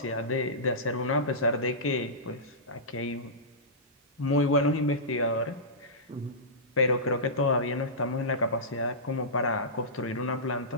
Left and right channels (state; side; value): normal; both; correlation -0.18